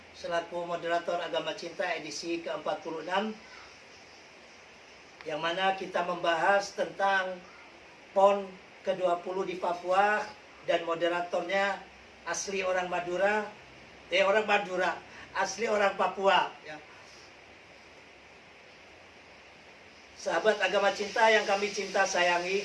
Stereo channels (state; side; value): identical; both; correlation 1.00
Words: selaku moderator Agama Cinta edisi ke-46, yang mana kita membahas tentang PON ke-20 di Papua, dan moderatornya asli orang Madura, asli orang Papua ya. Sahabat Agama Cinta yang kami cinta sayangi,